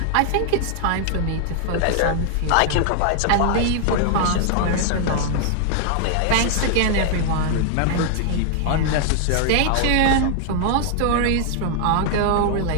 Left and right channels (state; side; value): different; both; correlation 0.00